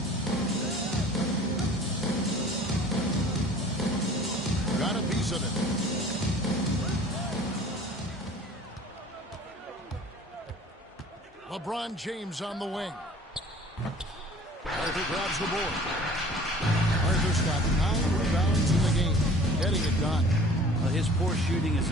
Got a piece of it. LeBron James on the wing. Arthur grabs the board. Arthur's got 9 rebounds in the game. Getting it done. Well, his poor shooting is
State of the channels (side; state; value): both; normal; correlation 0.48